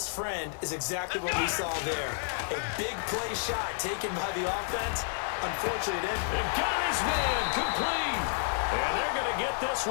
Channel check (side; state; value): right; silent; digital silence